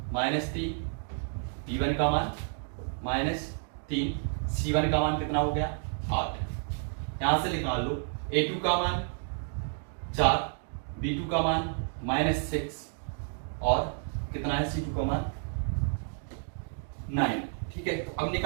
-3, b1 का मान -3, c1 का मान कितना हो गया 8। यहां से निकाल लो a2 का मान 4, b2 का मान -6 और कितना है c2 का मान 9। ठीक है, तो अब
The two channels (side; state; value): left; silent; 57 dB below the other